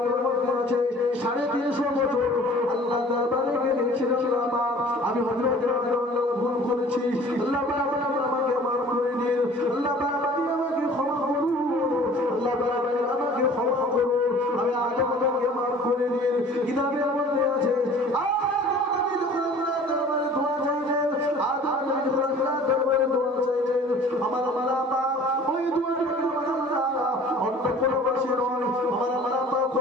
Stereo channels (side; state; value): both; normal; correlation 0.48